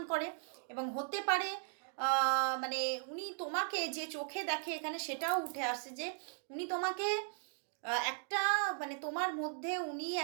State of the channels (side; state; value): left; silent; 53 dB below the other